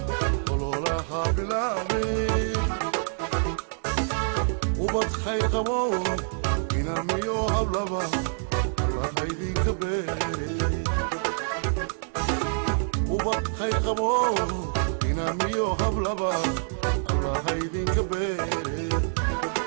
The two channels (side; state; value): left; silent; 61 dB below the other